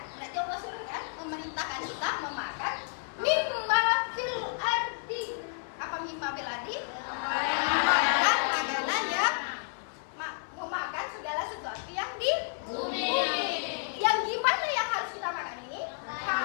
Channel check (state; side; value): silent; right; 57 dB below the other